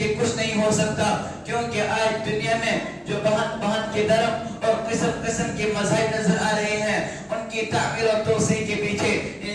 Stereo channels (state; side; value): identical; both; correlation 1.00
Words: کچھ نہیں ہو سکتا، کیونکہ آج دنیا میں جو بہن بہن کے درم اور قسم قسم کے مذاہب نظر آ رہے ہیں، ان کی تعمیر اور توسیع کے پیچھے